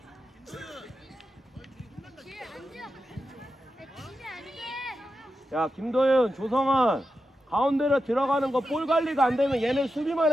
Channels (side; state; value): both; normal; correlation 0.89